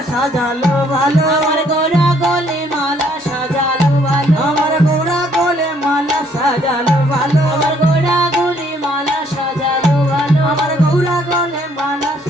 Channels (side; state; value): both; normal; correlation 0.65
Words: সাজালো ভালো, আমার গোরা গলে মালা সাজালো ভালো, আমার গোড়া গলে মালা সাজালো ভালো, আমার গোরা গলে মালা সাজালো ভালো, আমার গৌরা গলে মালা